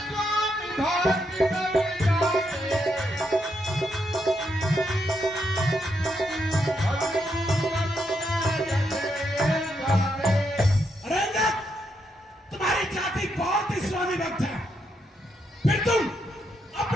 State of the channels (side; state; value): both; normal; correlation 0.79